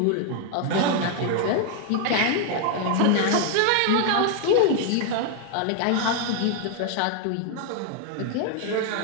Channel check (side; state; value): both; different; correlation 0.00